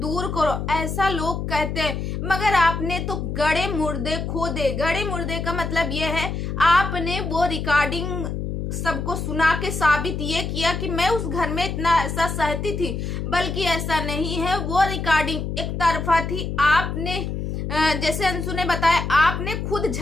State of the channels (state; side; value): noise; left; hum, 4 dB below the sound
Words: करो, ऐसा लोग कहते हैं। मगर आपने तो गड़े मुर्दे खोदे। गड़े मुर्दे का मतलब ये है आपने वो रिकॉर्डिंग सबको सुना के साबित ये किया कि मैं उस घर में इतना ऐसा सहती थी, बल्कि ऐसा नहीं है। वो रिकॉर्डिंग एक तरफा थी। आपने जैसे अंशु ने बताया, आपने खुद